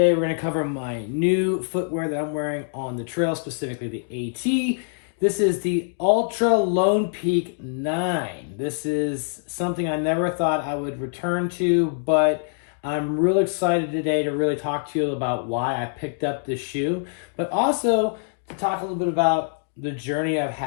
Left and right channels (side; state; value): right; silent; digital silence